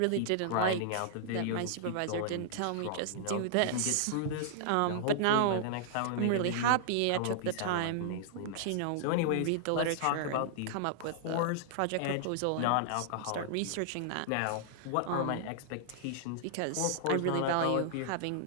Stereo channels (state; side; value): different; both; correlation -0.01